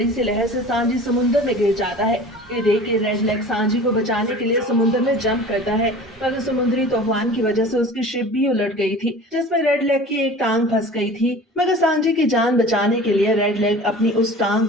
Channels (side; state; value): both; normal; correlation 0.40